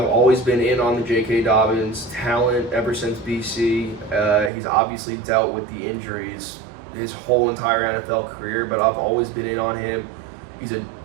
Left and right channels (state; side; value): drops out; left; at 4.5 s